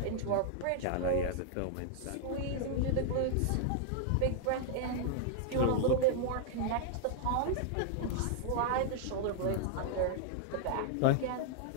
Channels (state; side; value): different; both; correlation -0.01